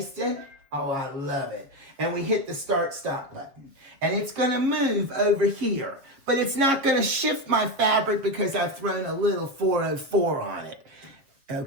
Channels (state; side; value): late; left; 7.0 ms